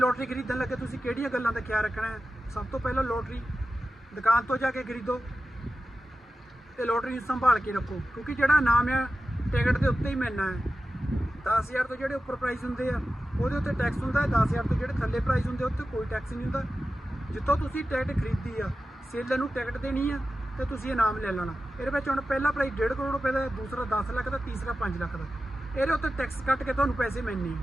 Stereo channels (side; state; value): both; normal; correlation 0.93